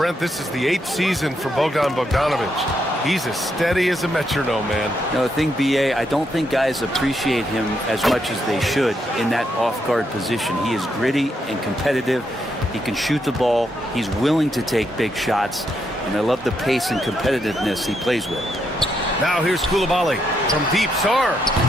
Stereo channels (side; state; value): both; normal; correlation 0.79